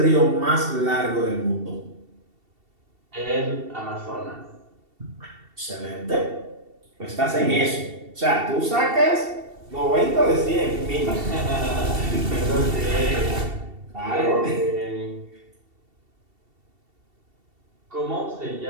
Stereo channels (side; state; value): left; late; 2.7 ms